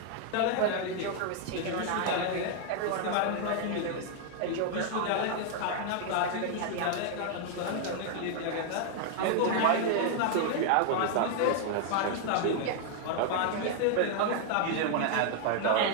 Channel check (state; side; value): different; both; correlation 0.00